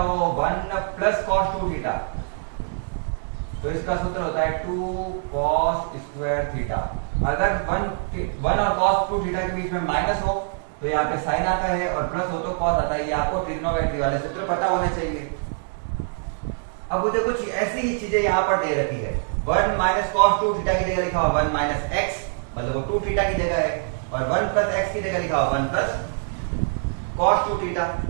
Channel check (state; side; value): silent; left; digital silence